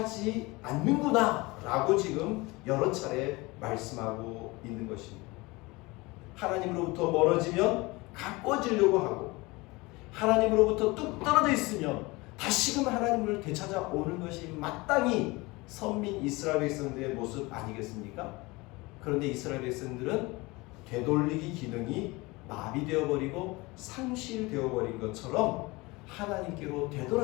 않는구나 라고 지금 여러 차례 말씀하고 있는 것입니다. 하나님으로부터 멀어지면 가꿔지려고 하고 하나님으로부터 뚝 떨어져 있으면 다시금 하나님을 되찾아오는 것이 마땅히 선민 이스라엘 백성들의 모습 아니겠습니까? 그런데 이스라엘 백성들은 되돌리기 기능이 마비되어 버리고 상실되어 버린 것처럼 하나님께로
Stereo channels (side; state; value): right; quieter; 23.4 dB